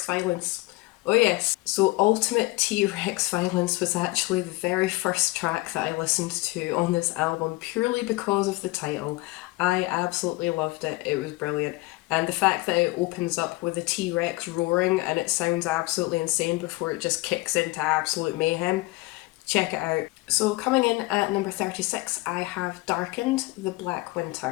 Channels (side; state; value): right; quieter; 21.4 dB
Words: Violence. Oh yes, so Ultimate T-Rex Violence was actually the very first track that I listened to on this album purely because of the title. I absolutely loved it, it was brilliant. And the fact that it opens up with a T-Rex roaring and it sounds absolutely insane before it just kicks into absolute mayhem. Check it out. So coming in at number 36, I have Darkened, The Black